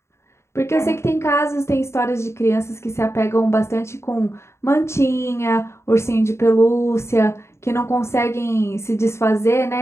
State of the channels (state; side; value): late; right; 0.13 ms